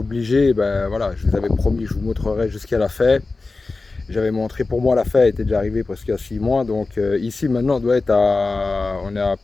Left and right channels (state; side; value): quieter; right; 3.7 dB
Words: ben voilà, je vous avais promis, je vous montrerai jusqu'à la fin. J'avais montré pour moi la fin était déjà arrivée presque à 6 mois, donc ici maintenant on est à un